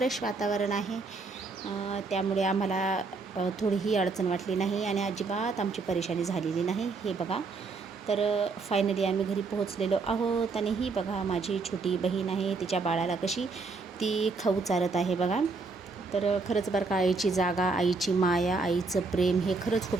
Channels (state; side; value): quieter; left; 4.1 dB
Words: वातावरण आहे. त्यामुळे आम्हाला थोडीही अडचण वाटली नाही आणि अजिबात आमची परेशानी झालेली नाही. हे बघा, तर फायनली आम्ही घरी पोहोचलेलो आहोत. आणि ही बघा माझी छोटी बहीण आहे, तिच्या बाळाला कशी ती खाऊ चारत आहे बघा. तर खरंच बरं का, आईची जागा, आईची माया, आईचं प्रेम हे खरंच खूप